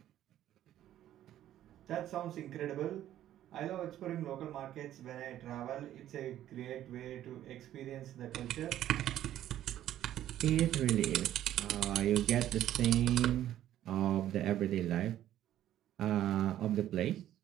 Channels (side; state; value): left; quieter; 12.3 dB